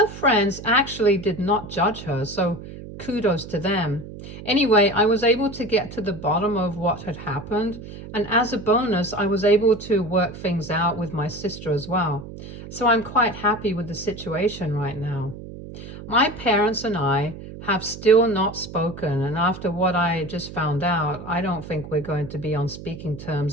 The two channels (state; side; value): noise; right; hum, 13 dB below the sound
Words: friends actually did not judge her, so kudos to them. Anyway, I was able to get to the bottom of what had happened, and as a bonus, I was able to work things out with my sister as well. So I'm quite happy with the situation right now. My parents and I have still not spoken, and after what I just found out, I don't think we're going to be on speaking